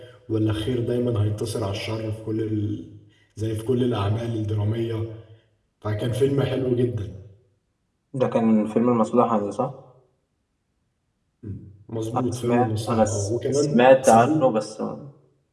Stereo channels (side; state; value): both; identical; correlation 1.00